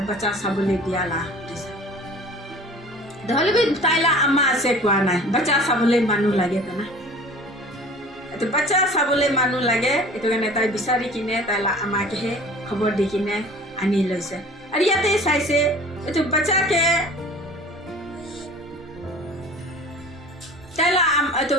বাচ্চা চাবলে দিয়ালা নহলে বি তাইলা আমা আছে কোৱা নাই বাচ্চা চাবলে মানুহ লাগে তো না তো বাচ্চা চাবলে মানুহ লাগে এটো কাৰণে তাই বিচাৰি কিনে তাইলা আমাকে হে খবৰ দি কিনে আনি লৈছে আৰু ইয়াতে চাইছে এটো বাচ্চাকে তাইলা এটো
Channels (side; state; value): both; normal; correlation 0.45